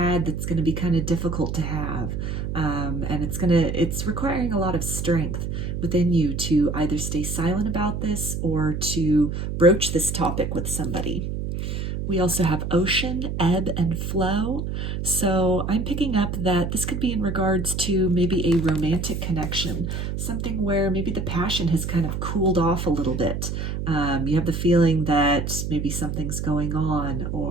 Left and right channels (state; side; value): noise; right; hum, 3 dB below the sound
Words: that's going to be kind of difficult to have. And it's requiring a lot of strength within you to either stay silent about this or to broach this topic with somebody. We also have ocean, ebb, and flow. So I'm picking up that this could be in regards to maybe a romantic connection, something where maybe the passion has kind of cooled off a little bit. You have the feeling that maybe something's going on,